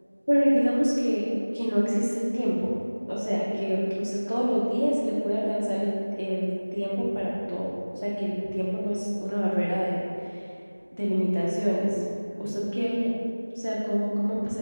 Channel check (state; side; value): inverted; both; correlation -1.00